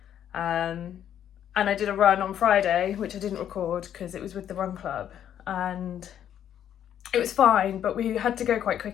And I did a run on Friday, which I didn't record because it was with the run club, and it was fine, but we had to go quite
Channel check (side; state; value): right; quieter; 10.0 dB